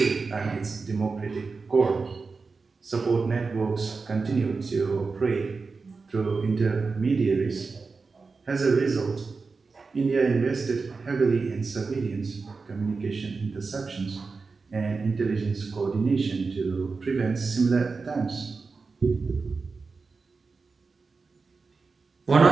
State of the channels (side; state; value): left; quieter; 4.4 dB